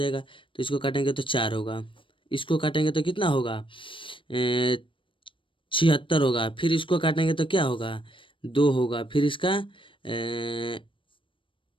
तो इसको काटेंगे तो 4 होगा, इसको काटेंगे तो कितना होगा 76 होगा, फिर इसको काटेंगे तो क्या होगा 2 होगा, फिर इसका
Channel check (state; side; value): late; right; 0.25 ms